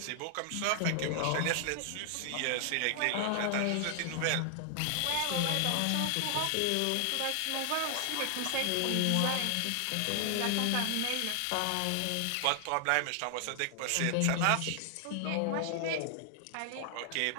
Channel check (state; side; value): different; both; correlation 0.00